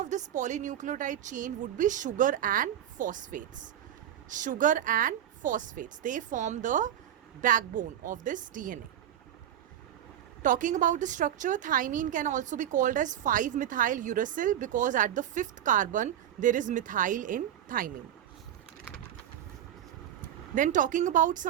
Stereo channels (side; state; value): left; quieter; 10.7 dB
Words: this polynucleotide chain would be sugar and phosphates. Sugar and phosphates, they form the backbone of this DNA. Talking about the structure, thymine can also be called as 5-methyl uracil because at the 5th carbon there is methyl in thymine. Then talking about